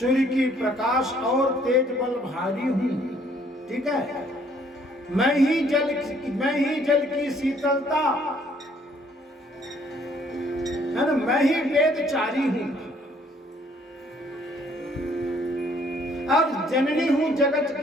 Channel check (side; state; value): both; normal; correlation 0.63